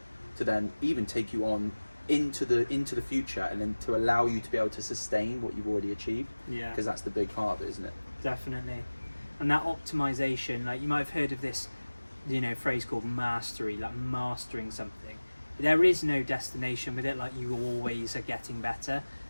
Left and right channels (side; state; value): both; inverted; correlation -1.00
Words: to then even take you on into the future, and then to allow you to be able to sustain what you've already achieved. Yeah. Because that's the big part of it, isn't it? Definitely. And that optimization, like you might have heard of this, phrase called mastery, like mastering something. There is no destination with it, like you always are getting better,